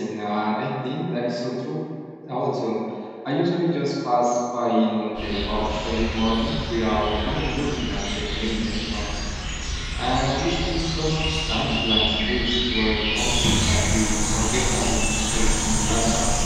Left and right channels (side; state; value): both; identical; correlation 1.00